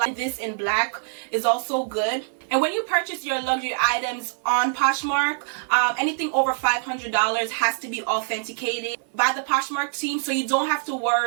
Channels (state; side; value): silent; left; digital silence